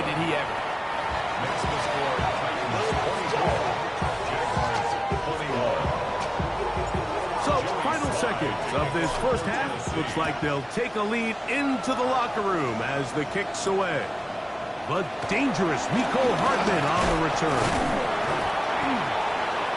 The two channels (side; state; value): both; identical; correlation 1.00